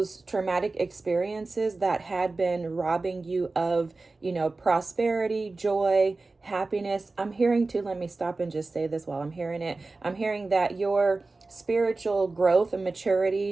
traumatic experiences that had been robbing you of, you know, prosperity, joy, happiness. I'm hearing too, let me stop and just say this while I'm hearing it. I'm hearing that your spiritual growth and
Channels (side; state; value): left; quieter; 3.5 dB